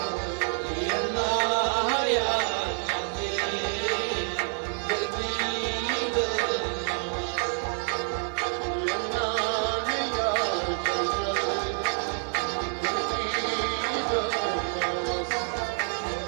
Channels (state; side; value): silent; left; 59 dB below the other